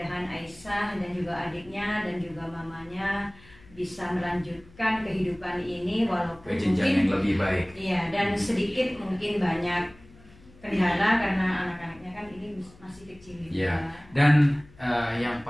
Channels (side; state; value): left; noise; hum, 24 dB below the sound